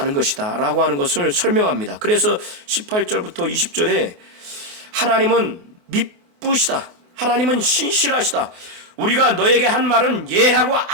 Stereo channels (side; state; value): left; late; 24 ms